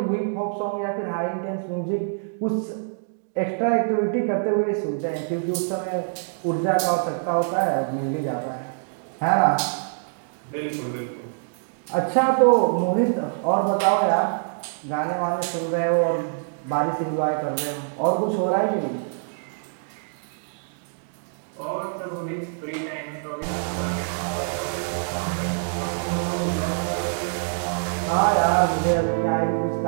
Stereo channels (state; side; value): silent; left; digital silence